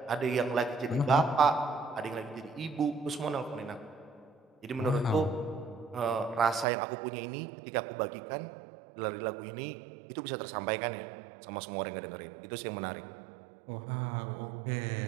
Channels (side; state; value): left; drops out; at 6.7 s